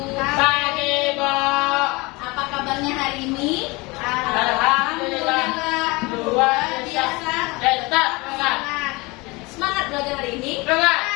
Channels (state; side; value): quieter; right; 24.7 dB